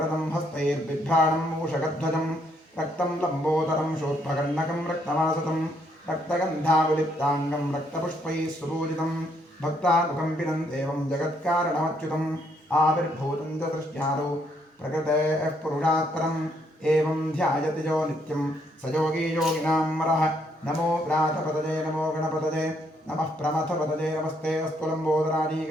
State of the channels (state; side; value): normal; both; correlation 0.71